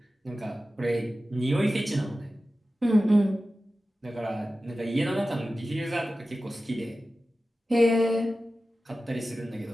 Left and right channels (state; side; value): normal; both; correlation 0.94